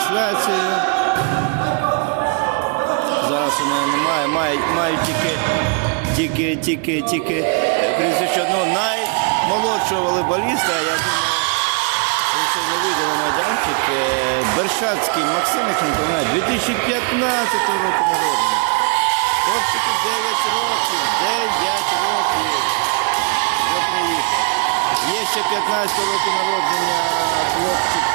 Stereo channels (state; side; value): quieter; left; 38.2 dB